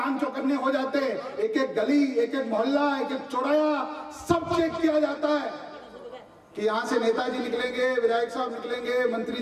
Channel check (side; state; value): both; identical; correlation 1.00